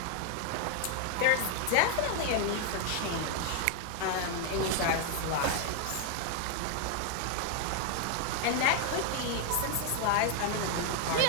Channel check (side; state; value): both; different; correlation 0.00